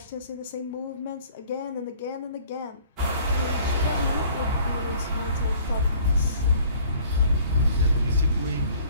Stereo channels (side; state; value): both; inverted; correlation -0.54